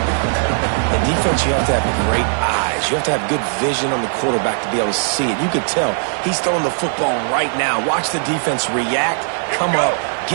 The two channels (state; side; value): silent; left; 67 dB below the other